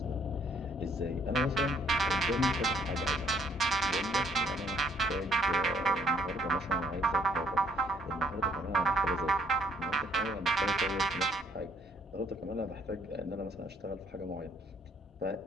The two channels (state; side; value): normal; both; correlation 0.66